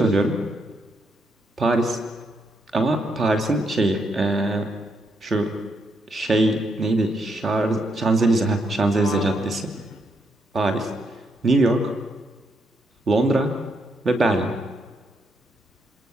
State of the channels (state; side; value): normal; both; correlation 0.78